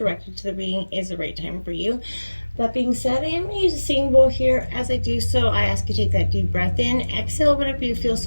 to the reading is the right time for you. That being said, I am going to use a singing bowl here. As I do so, I ask you to take that deep breath in, exhale whenever you feel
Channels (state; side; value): inverted; both; correlation -1.00